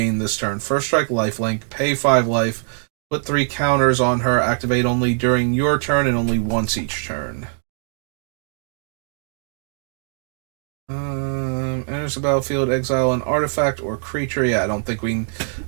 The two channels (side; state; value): left; silent; 64 dB below the other